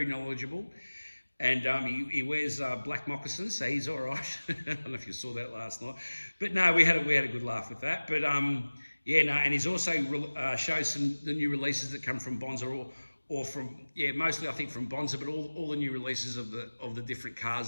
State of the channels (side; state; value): both; inverted; correlation -1.00